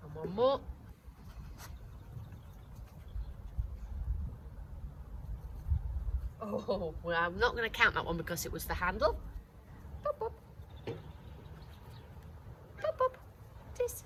And one more. Oh, well, I'm not going to count that one because it was the handle. Pop, pop. Pop, pop.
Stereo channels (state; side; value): identical; both; correlation 1.00